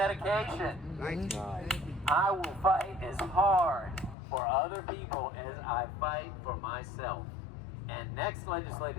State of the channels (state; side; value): drops out; right; at 4.2 s